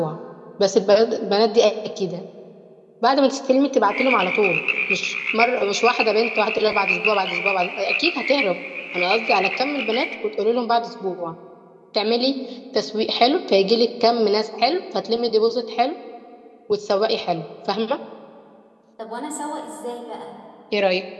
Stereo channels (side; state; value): both; identical; correlation 1.00